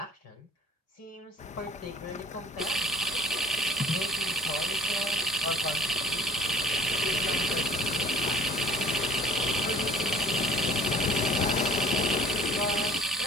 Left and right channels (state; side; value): normal; both; correlation 0.50